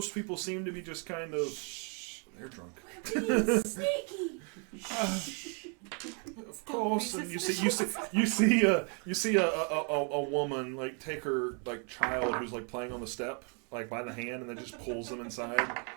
people seem to be just kind of. They're drunk. Of course, and you see a woman like take her like child who's like playing on the step like by the hand, and then just pulls them inside,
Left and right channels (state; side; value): quieter; left; 38.2 dB